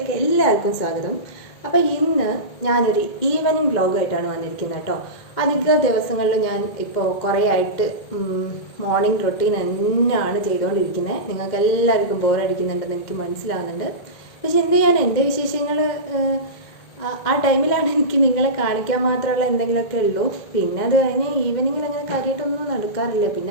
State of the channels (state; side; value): late; right; 2.1 ms